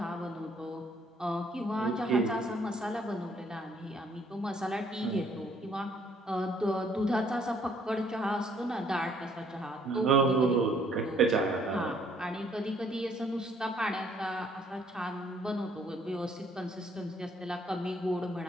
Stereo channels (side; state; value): both; normal; correlation 0.64